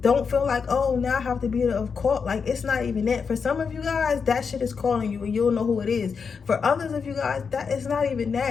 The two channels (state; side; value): quieter; right; 5.8 dB